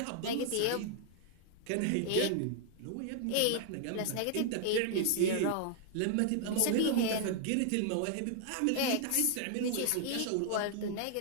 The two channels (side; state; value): both; different; correlation -0.01